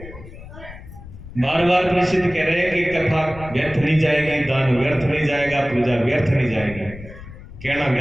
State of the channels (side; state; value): left; noise; rumble, 15 dB below the sound